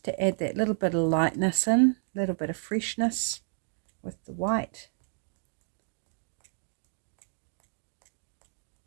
to add that little bit of lightness in, a little bit of freshness with the white.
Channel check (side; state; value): left; silent; digital silence